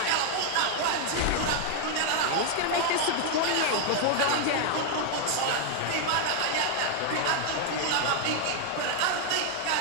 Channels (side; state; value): both; different; correlation 0.00